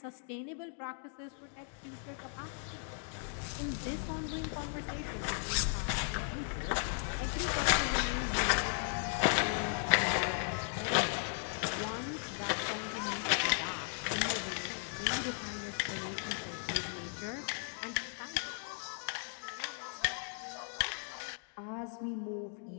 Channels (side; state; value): right; silent; 53 dB below the other